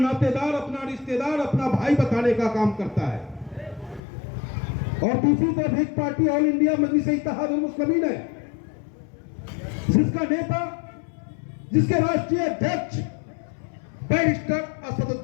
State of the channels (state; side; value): drops out; right; at 4.0 s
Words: अपना रिश्तेदार, अपना भाई बताने का काम करता है, और दूसरी तरफ एक पार्टी ऑल इंडिया मजलिस-ए-इत्तेहादुल मुस्लिमीन है जिसका नेता, जिसके राष्ट्रीय अध्यक्ष बैरिस्टर